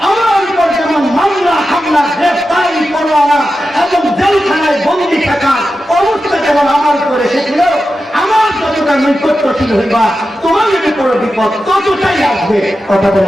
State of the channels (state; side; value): normal; both; correlation 0.91